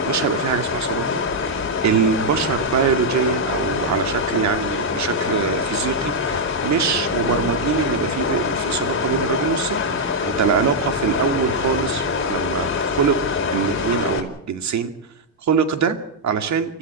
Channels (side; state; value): both; normal; correlation -0.03